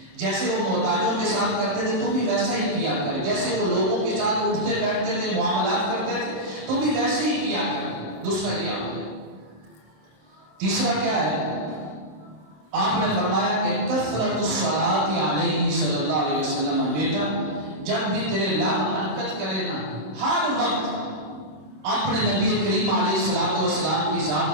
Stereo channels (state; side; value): late; left; 26 ms